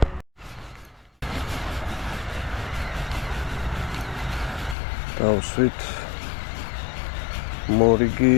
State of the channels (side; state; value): right; drops out; at 4.8 s